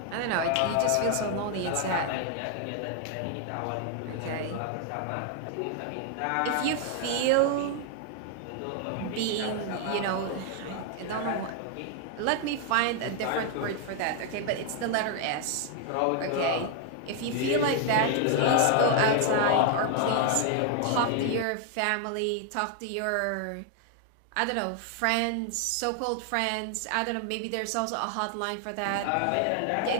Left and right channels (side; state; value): both; different; correlation 0.00